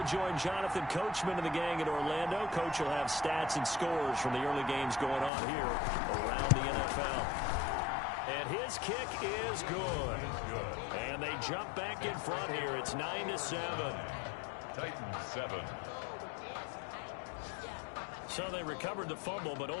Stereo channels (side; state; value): right; drops out; at 5.3 s